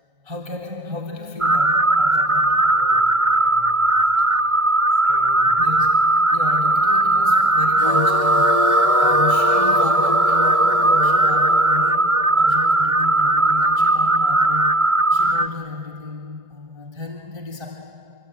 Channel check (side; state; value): left; late; 1.6 ms